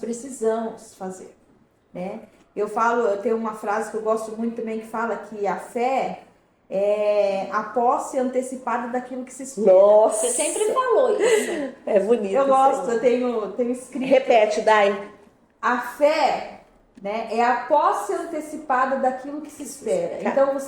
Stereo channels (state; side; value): identical; both; correlation 1.00